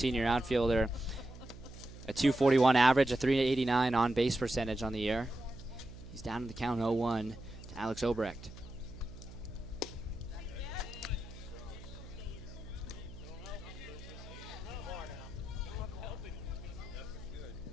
outfielder, a 241 average, a 389 on base percentage on the year. He's down in the count 0-1 to Alex Obrecht.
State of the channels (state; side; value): noise; right; hum, 15 dB below the sound